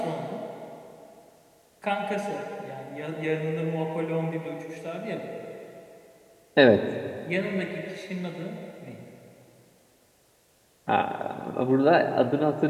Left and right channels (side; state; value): both; identical; correlation 1.00